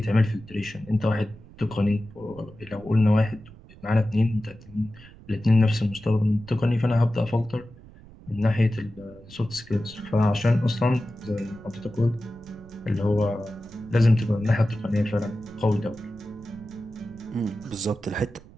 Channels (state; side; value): noise; right; rumble, 21 dB below the sound